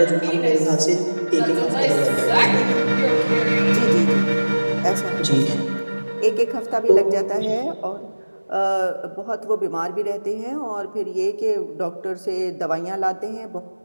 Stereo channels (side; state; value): both; inverted; correlation -1.00